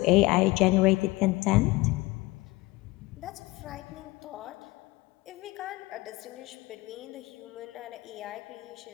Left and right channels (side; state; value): right; quieter; 21.3 dB